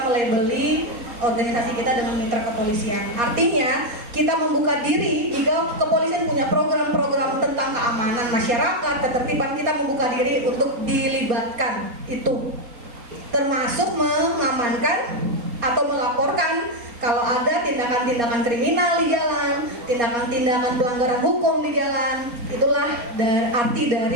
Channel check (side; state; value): left; late; 4.2 ms